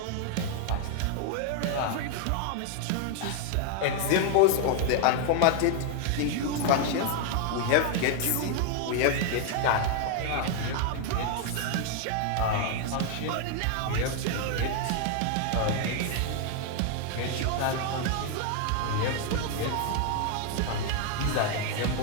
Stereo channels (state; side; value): different; both; correlation 0.00